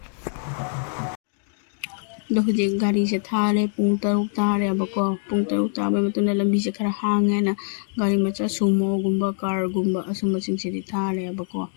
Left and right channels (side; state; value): right; silent; 63 dB below the other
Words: ꯑꯗꯣ ꯍꯧꯖꯤꯛ ꯒꯥꯔꯤꯁꯦ ꯊꯥꯔꯦ ꯄꯨꯡ 6 ꯇꯥꯔꯦꯕꯀꯣ ꯄꯨꯡ 6 ꯇꯥꯕꯩ ꯃꯇꯨꯡꯗ ꯂꯝꯕꯤꯁꯦ ꯈꯔ ꯍꯥꯡꯉꯦꯅ ꯒꯥꯔꯤ ꯃꯆꯥ ꯁꯨꯃꯣꯒꯨꯝꯕ ꯀꯥꯔꯒꯨꯝꯕ ꯑꯁꯨꯝꯕꯁꯤꯡꯁꯤꯗꯤ ꯊꯥꯔꯦꯕꯀꯣ